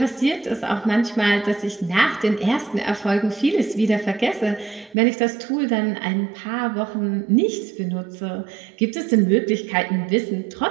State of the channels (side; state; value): left; drops out; at 5.0 s